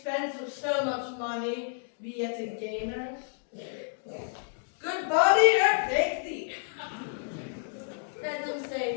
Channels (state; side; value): silent; right; digital silence